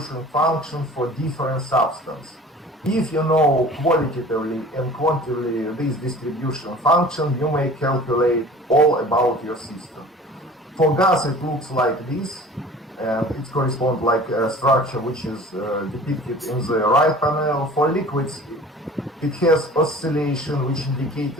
function for different substances. If you know qualitatively and quantitatively this distribution function, you may calculate all about your system. For gas, it looks like this, and it corresponds like a structure which is depicted in the right panel. For liquids, it has oscillation, which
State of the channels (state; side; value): normal; both; correlation 0.44